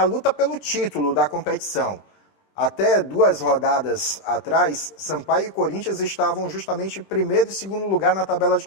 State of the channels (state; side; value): late; right; 20 ms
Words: luta pelo título da competição. Até 2 rodadas atrás, Sampaio e Corinthians estavam justamente em primeiro e segundo lugar na tabela de